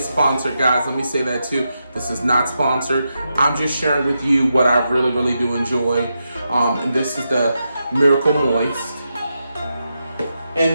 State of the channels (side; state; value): both; inverted; correlation -0.86